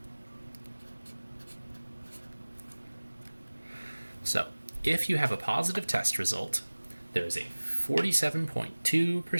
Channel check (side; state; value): both; inverted; correlation -1.00